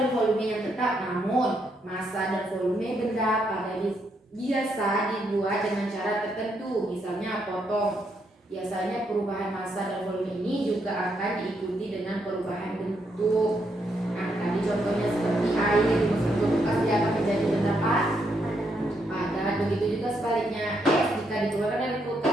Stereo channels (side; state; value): both; normal; correlation 0.77